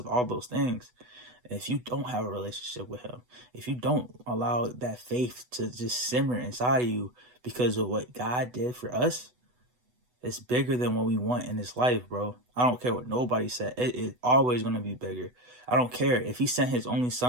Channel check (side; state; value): left; late; 8.1 ms